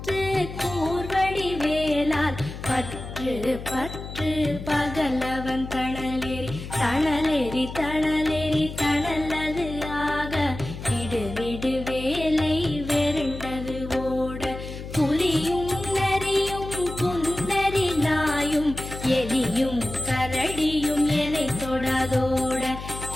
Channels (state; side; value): noise; left; hum, 10 dB below the sound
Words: கூர்வடி வேலால் பற்று பற்று பகலவன் தணலேறி தணலேறி தணலேறி தணலது ஆக விடு விடு வேலை வெருண்டது ஓட புலியும் நரியும் புன்னரி நாயும் எலியும் கரடியும் எனை தொடாதோட